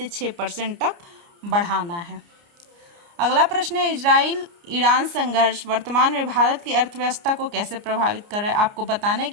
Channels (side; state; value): left; late; 29 ms